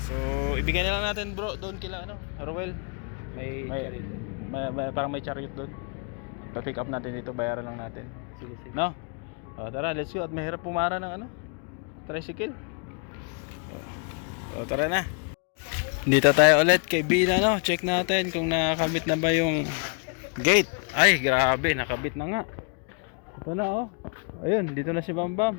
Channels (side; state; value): right; quieter; 38.9 dB